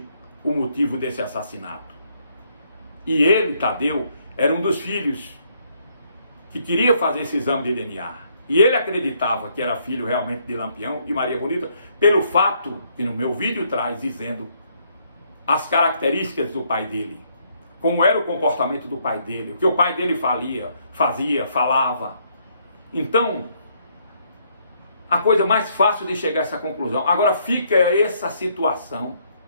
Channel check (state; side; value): inverted; both; correlation -0.70